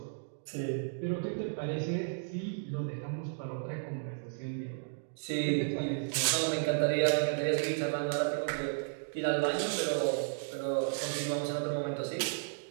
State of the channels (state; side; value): silent; left; digital silence